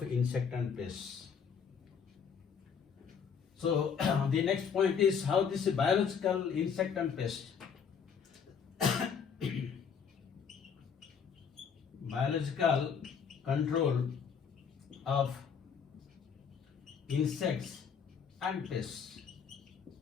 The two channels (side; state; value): right; quieter; 6.8 dB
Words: insect and pests. So the next point is how this biological insect and pest. Biological control of insects and pests.